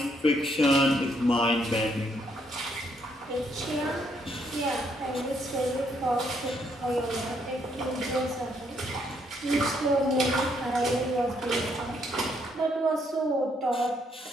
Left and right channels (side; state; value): both; normal; correlation 0.72